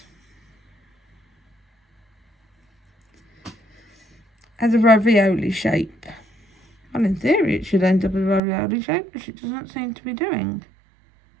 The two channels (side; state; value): left; drops out; at 8.4 s